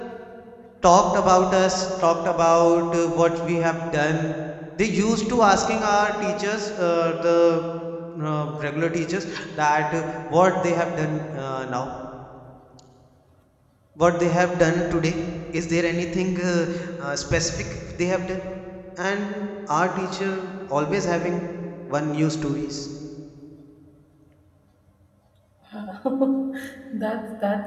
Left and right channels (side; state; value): both; identical; correlation 1.00